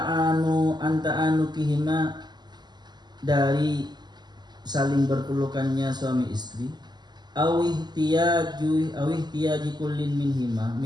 ma dari saling berpelukannya suami istri, awihtiyaji kullin minhuma,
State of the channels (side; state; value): left; late; 0.21 ms